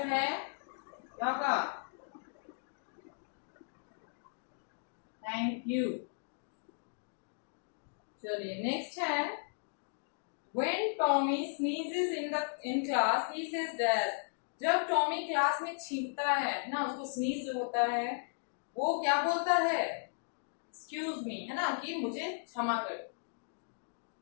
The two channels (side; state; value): right; silent; digital silence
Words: है क्या होगा, थैंक यू। चलिए नेक्स्ट है When Tommy sneezes in class, he says dash. जब टॉमी क्लास में छींकता है ना, उसको स्नीज होता है, वो क्या बोलता है, एक्सक्यूज मी, है ना, कि मुझे क्षमा करो।